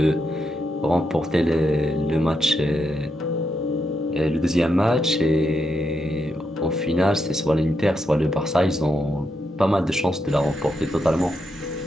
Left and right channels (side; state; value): both; normal; correlation 0.82